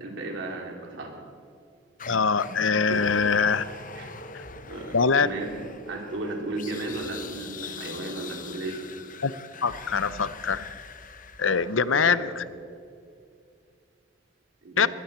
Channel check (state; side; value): quieter; right; 4.1 dB